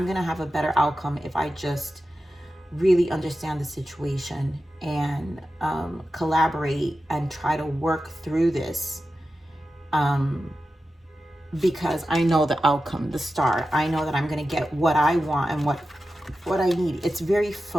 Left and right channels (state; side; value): normal; both; correlation 0.92